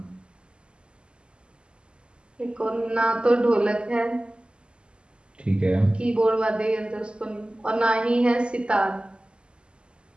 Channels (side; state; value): left; late; 0.050 ms